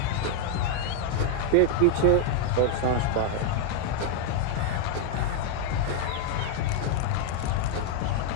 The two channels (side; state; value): both; different; correlation 0.00